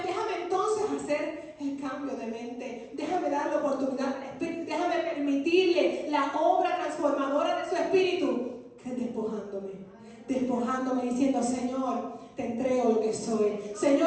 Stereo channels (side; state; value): both; identical; correlation 1.00